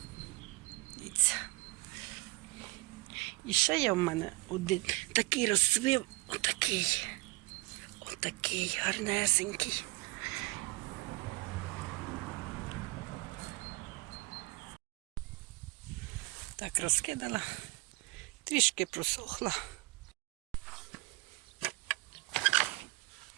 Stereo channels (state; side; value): quieter; left; 22.7 dB